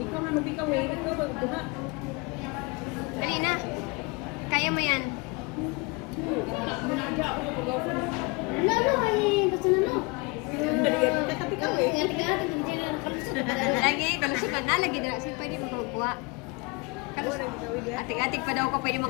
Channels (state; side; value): quieter; right; 28.0 dB